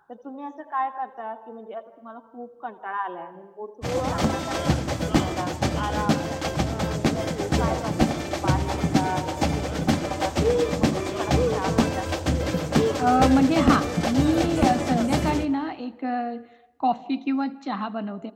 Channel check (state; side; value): identical; both; correlation 1.00